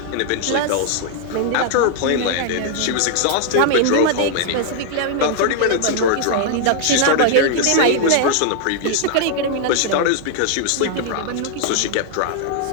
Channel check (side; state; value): both; different; correlation 0.00